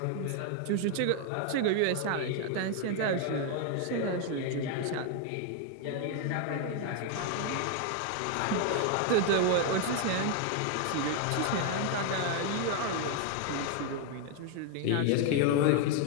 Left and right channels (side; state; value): both; different; correlation 0.01